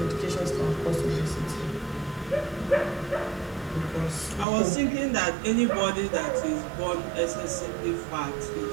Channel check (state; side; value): drops out; left; at 4.5 s